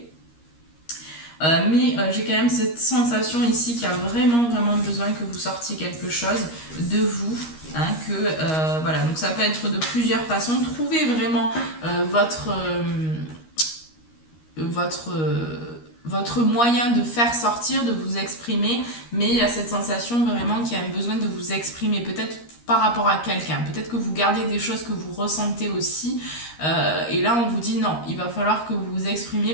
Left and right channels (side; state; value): right; late; 13 ms